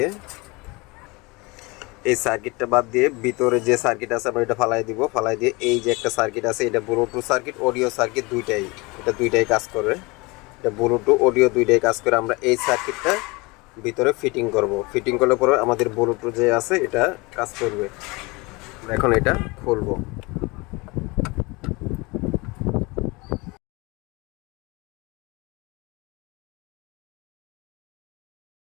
বাদ দিয়ে ভিতরে যে সার্কিট আছে আমরা এটা ফালাই দিব। ফালাই দিয়ে এই যে একটা সার্কিট আছে, এটা ব্লুটুথ সার্কিট, অডিও সার্কিট দুইটাই কাজ করে। এটা ব্লুটুথ অডিও দুইটাই কাজ করে। আমরা এই সার্কিটটা ভিতরে ফিটিং করব। ফিটিং করলে পরে আমাদের ব্লুটুথ যে আছে এটা কাজ করবে। এখন এটা খুলবো।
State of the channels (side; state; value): right; quieter; 25.3 dB